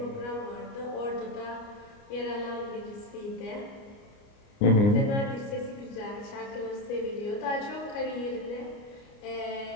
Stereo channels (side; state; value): right; late; 29 ms